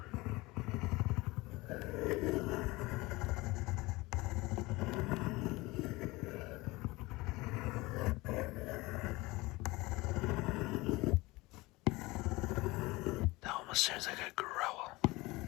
That almost sounds like a growl.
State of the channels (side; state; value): right; quieter; 21.8 dB